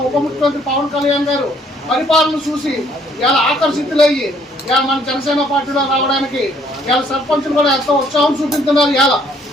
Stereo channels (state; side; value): normal; both; correlation 0.64